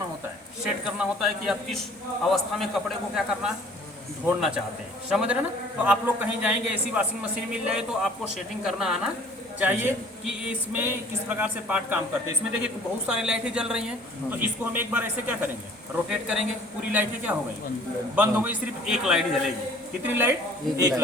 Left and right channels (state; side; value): normal; both; correlation 0.53